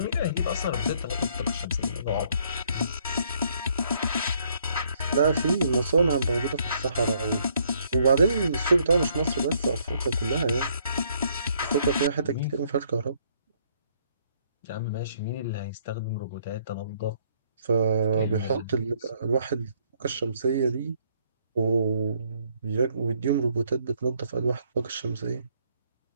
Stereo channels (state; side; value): inverted; both; correlation -0.67